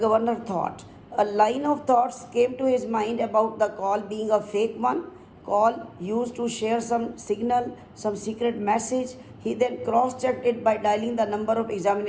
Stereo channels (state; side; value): identical; both; correlation 1.00